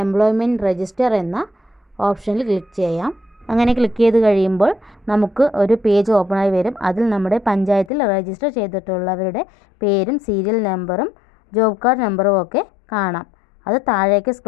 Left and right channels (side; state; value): right; drops out; at 7.9 s